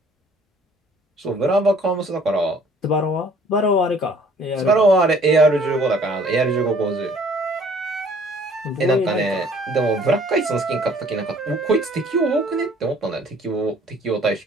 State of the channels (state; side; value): normal; both; correlation 0.56